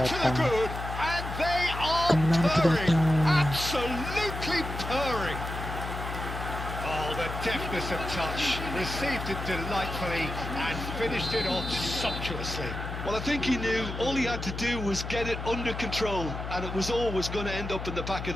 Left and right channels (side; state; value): left; noise; hum, 6 dB below the sound